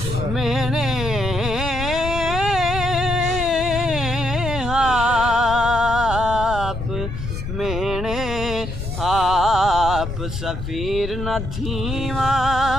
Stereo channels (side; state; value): left; noise; rumble, 6 dB below the sound